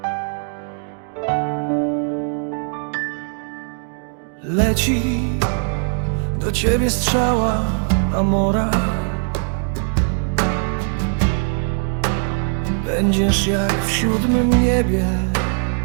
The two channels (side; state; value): left; silent; 55 dB below the other